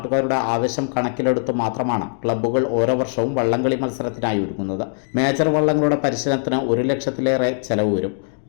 ആവശ്യം കണക്കിലെടുത്ത് മാത്രമാണ് ക്ലബ്ബുകൾ ഓരോ വർഷവും വള്ളംകളി മത്സരത്തിനായി ഒരുങ്ങുന്നത്. മേജർ വള്ളങ്ങളുടെ പരിശീലനത്തിന് 1 ലക്ഷത്തിലേറെ ചെലവ് വരും.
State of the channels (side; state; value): right; silent; 63 dB below the other